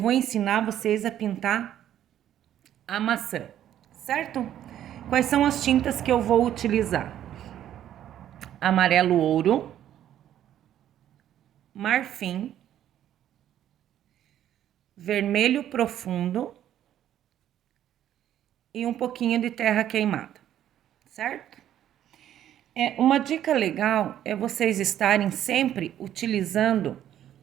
ensinar vocês a pintar a maçã, certo? Quais são as tintas que eu vou utilizar? Amarelo ouro, marfim, vermelho profundo e um pouquinho de terra queimada, certo? Uma dica legal é vocês estarem sempre utilizando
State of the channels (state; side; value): quieter; left; 11.3 dB